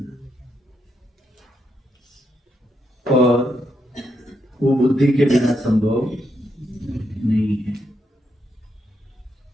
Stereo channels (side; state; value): both; normal; correlation 0.80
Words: और वो बुद्धि के बिना संभव नहीं है,